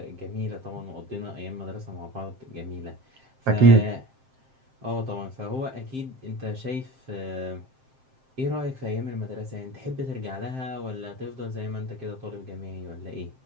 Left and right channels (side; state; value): left; late; 7.6 ms